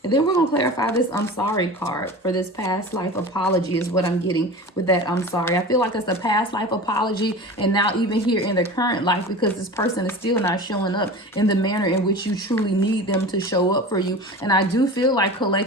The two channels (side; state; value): both; normal; correlation 0.34